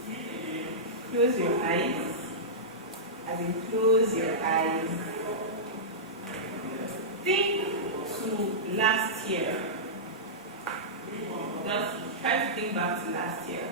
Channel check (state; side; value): normal; both; correlation -0.15